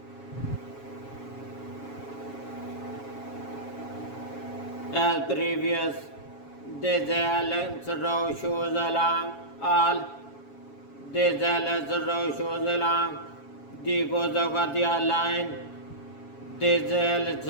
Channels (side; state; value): right; late; 7.2 ms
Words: as previous. This row shows along all. This row shows along the Gozogatiya line. This